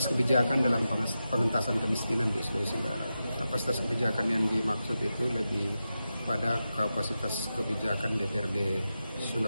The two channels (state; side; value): inverted; both; correlation -0.91